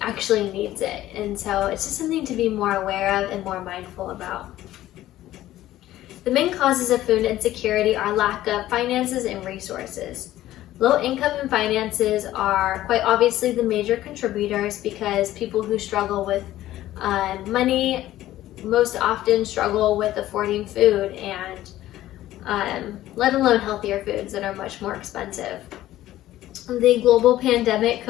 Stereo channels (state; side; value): quieter; right; 14.4 dB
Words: actually needs it. And so it's just something to be more aware of and more mindful about. The main causes of food insecurity are lack of finances and resources. Low income and finances are quite obviously the major contributors, because people who struggle with money most often struggle with affording food, and let alone healthier foods that are much more expensive. The global pandemic,